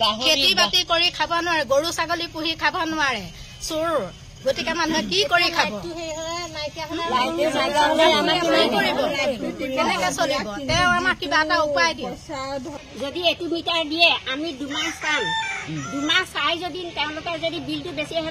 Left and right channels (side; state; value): both; identical; correlation 1.00